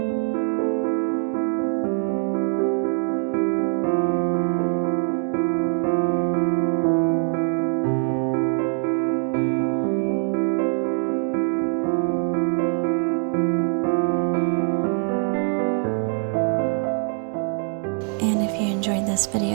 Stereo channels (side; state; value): left; quieter; 39.8 dB